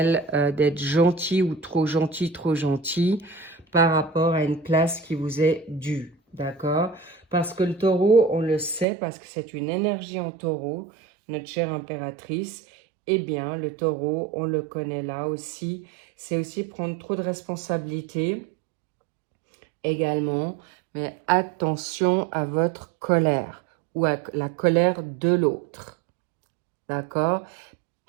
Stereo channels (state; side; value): drops out; left; at 8.8 s